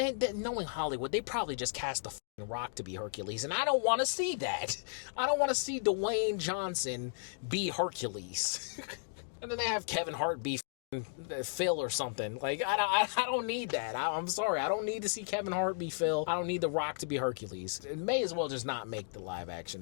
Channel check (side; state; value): right; silent; digital silence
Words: knowing Hollywood, they probably just cast the Rock to be Hercules, and I don't want to see that. I don't want to see Dwayne Johnson be Hercules. And then they have Kevin Hart be Phil or something. Like, I don't need that. I'm sorry. I don't need to see Kevin Hart be Phil. I don't need The Rock to be Hercules. It may as well just not make the live